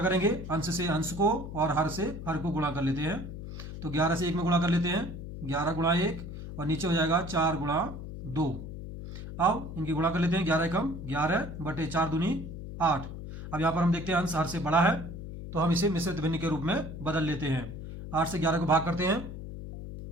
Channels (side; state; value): left; noise; hum, 9 dB below the sound